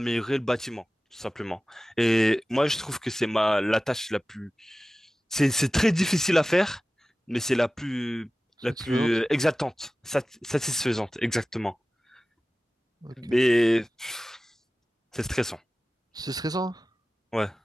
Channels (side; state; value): both; normal; correlation 0.96